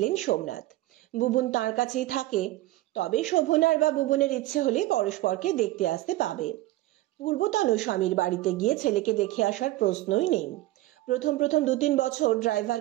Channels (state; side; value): quieter; left; 17.1 dB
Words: সোমনাথ। বুবুন তার কাছেই থাকে, তবে শোভনার বা বুবুনের ইচ্ছে হলে পরস্পরকে দেখতে আসতে পাবে। পূর্বতন স্বামীর বাড়িতে গিয়ে ছেলেকে দেখে আসার প্রশ্নই নেই। প্রথম 2-3 বছর